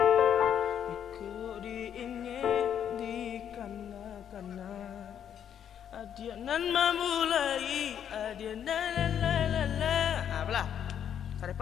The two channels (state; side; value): quieter; right; 9.1 dB